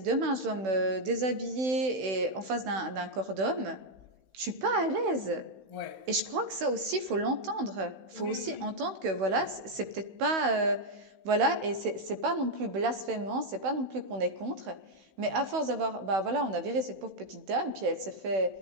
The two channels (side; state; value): left; late; 16 ms